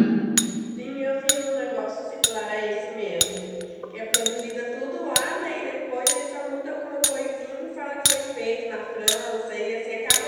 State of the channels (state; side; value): identical; both; correlation 1.00